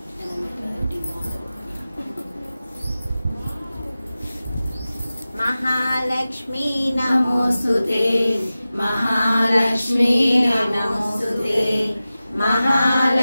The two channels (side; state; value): both; inverted; correlation -0.96